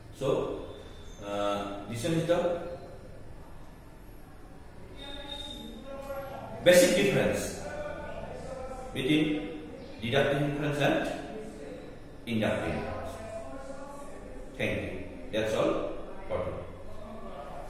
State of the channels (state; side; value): identical; both; correlation 1.00